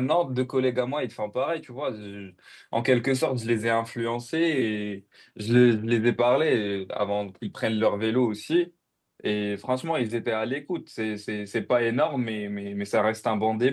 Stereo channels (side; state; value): both; identical; correlation 1.00